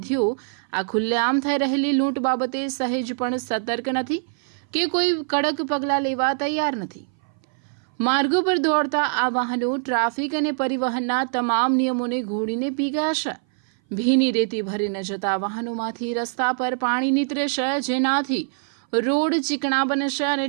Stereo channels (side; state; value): left; silent; 59 dB below the other